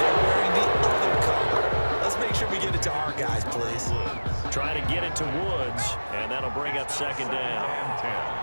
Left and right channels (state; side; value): inverted; both; correlation -1.00